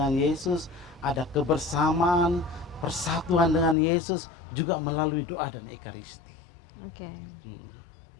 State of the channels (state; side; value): drops out; right; at 3.8 s